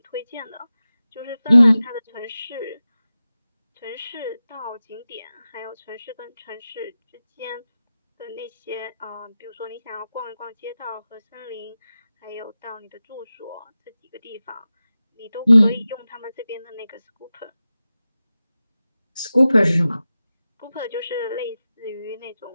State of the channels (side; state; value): both; inverted; correlation -0.94